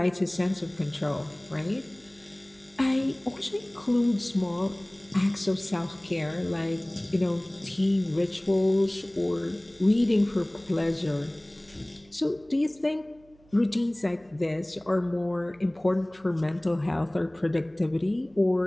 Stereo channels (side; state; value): right; noise; hum, 29 dB below the sound